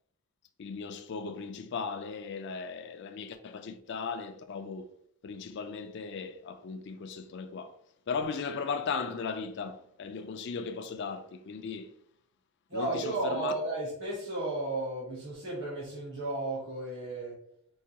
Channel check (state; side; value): normal; both; correlation -0.10